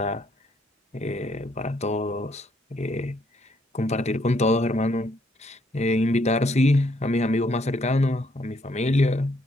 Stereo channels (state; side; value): normal; both; correlation 0.70